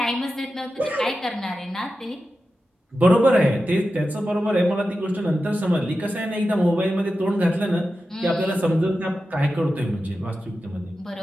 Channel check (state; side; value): normal; both; correlation 0.92